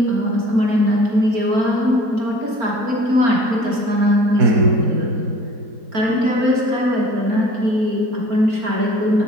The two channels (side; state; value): left; late; 4.4 ms